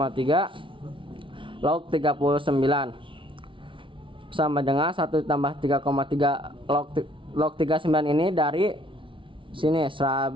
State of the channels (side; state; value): left; late; 0.25 ms